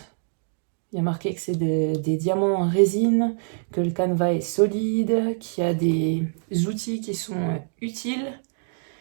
Il y a marqué que c'est des diamants en résine, que le canevas est solide, qu'il y a des outils qui sont utiles.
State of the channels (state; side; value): silent; left; digital silence